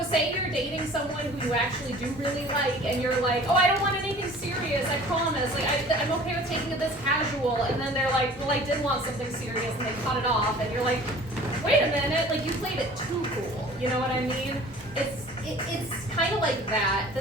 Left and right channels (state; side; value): normal; both; correlation 0.47